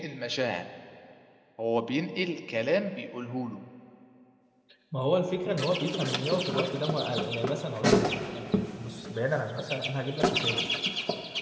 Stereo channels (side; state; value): both; identical; correlation 1.00